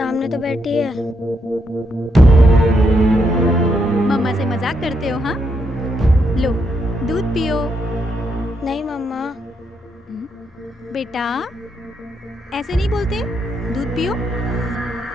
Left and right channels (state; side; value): normal; both; correlation 0.79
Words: तो बैठी है। मम्मा से मजाक करते हो? हाँ, लो दूध पियो। नहीं मम्मा। बेटा ऐसे नहीं बोलते, दूध पियो।